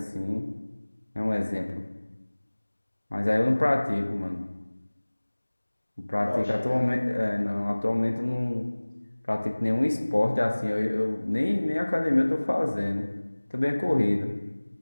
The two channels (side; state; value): both; inverted; correlation -1.00